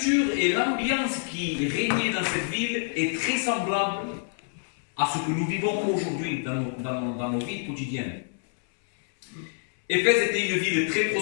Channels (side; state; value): right; silent; 60 dB below the other